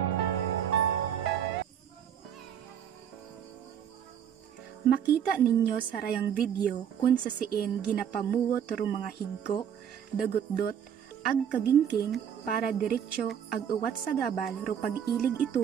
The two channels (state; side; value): quieter; left; 8.7 dB